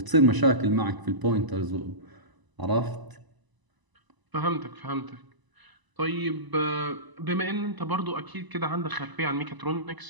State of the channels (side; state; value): left; late; 1.0 ms